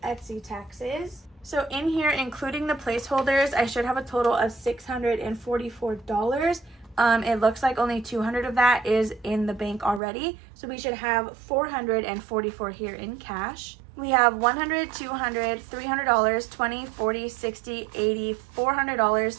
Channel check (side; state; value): left; drops out; at 10.0 s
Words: Etsy taxes. So in here, including the placeholders, I should have a total of $644. It looks like only 200 of that is in the bank already. So we should have 444 here in cash. We have $100, $200, $300, 20, 40, 60, 80,